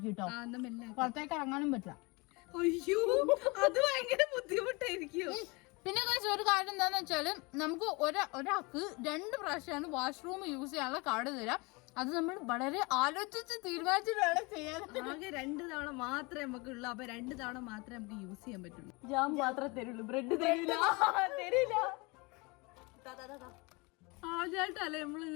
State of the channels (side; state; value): right; quieter; 26.9 dB